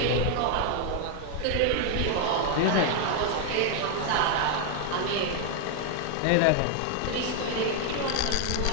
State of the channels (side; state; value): both; different; correlation 0.00